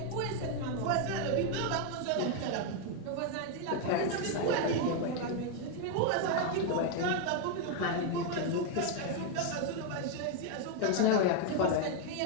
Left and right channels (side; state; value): both; different; correlation 0.01